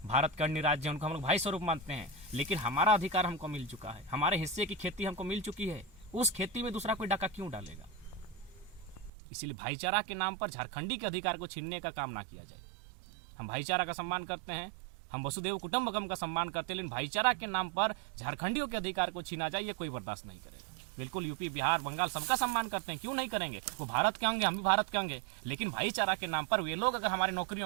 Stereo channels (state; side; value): drops out; left; at 9.1 s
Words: भारत के अन्य राज्य हैं उनको हम लोग भाई स्वरूप मानते हैं। लेकिन हमारा अधिकार हमको मिल चुका है, हमारे हिस्से की खेती हमको मिल चुकी है, उस खेती में दूसरा कोई डाका क्यों डालेगा? इसीलिए भाईचारा के नाम पर झारखंडी के अधिकार को छीनने का काम ना किया जाए। हम भाईचारा का सम्मान करते हैं, हम वसुदेव कुटुंबकम का सम्मान करते हैं, लेकिन भाईचारा के नाम पर झारखंडियों के अधिकार को छीना जाए, ये कोई बर्दाश्त नहीं करेगा। बिल्कुल यूपी, बिहार, बंगाल सबका सम्मान करते हैं, क्यों नहीं करेंगे? वो भारत के होंगे, हम भी भारत के होंगे। लेकिन भाईचारा के नाम पर वे लोग अगर हमारी